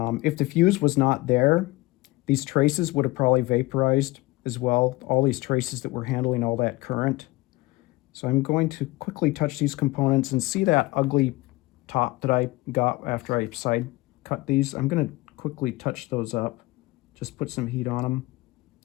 the fuse was not there, these traces would have probably vaporized as well, all these traces that were handling all that current. So I'm going to quickly touch these components and see that ugly top that I got after I side cut these. I'm going to quickly touch those up, just put some heat on them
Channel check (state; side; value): quieter; right; 20.7 dB